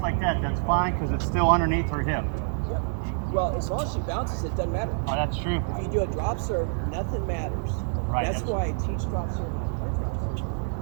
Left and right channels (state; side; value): silent; left; digital silence